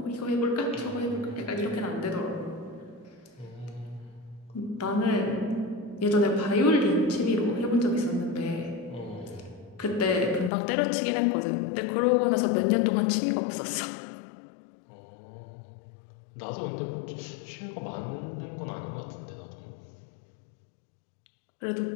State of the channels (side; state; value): right; drops out; at 10.5 s